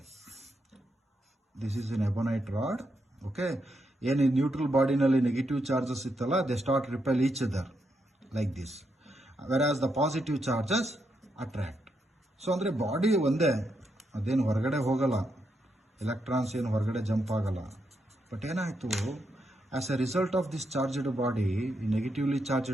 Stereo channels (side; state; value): both; normal; correlation 0.81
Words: this is an ebonite rod. Okay, ಏನು neutral ಬಾಡಿನಲ್ಲಿ negative charges ಇತ್ತಲ್ಲ, they start repel each other like this, whereas the positive charges attract. So ಅಂದರೆ body ಒಂದೇ, ಅದೇನು ಹೊರಗಡೆ ಹೋಗಲ್ಲ, ಎಲೆಕ್ಟ್ರಾನ್ಸ್ ಏನು ಹೊರಗಡೆ ಜಂಪ್ ಆಗಲ್ಲ. ಬಟ್ ಏನಾಯಿತು, as a result of this charged body, ಈ ನೆಗೆಟಿವ್ಲಿ